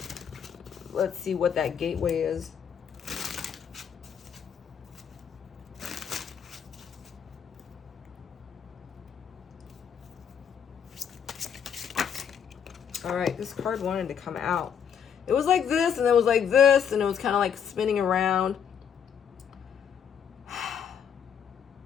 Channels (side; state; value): right; quieter; 7.8 dB